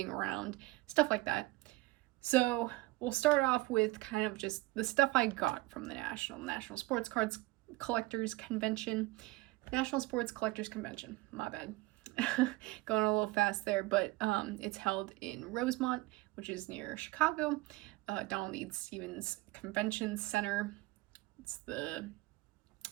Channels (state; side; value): quieter; left; 20.9 dB